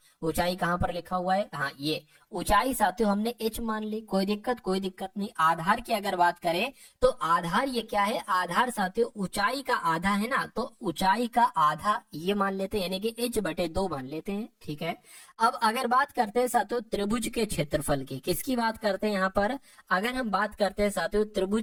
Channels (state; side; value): identical; both; correlation 1.00